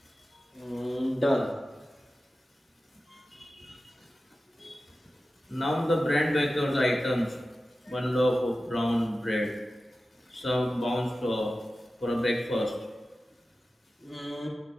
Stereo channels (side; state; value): both; normal; correlation 0.94